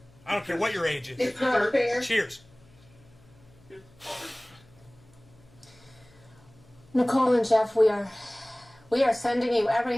I don't care what your age is. It's not fair. Cheers. Nicole and Jeff, we are sending you every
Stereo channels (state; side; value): noise; left; hum, 28 dB below the sound